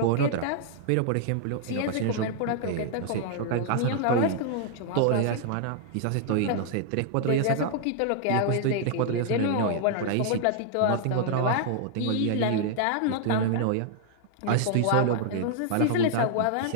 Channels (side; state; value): both; different; correlation 0.00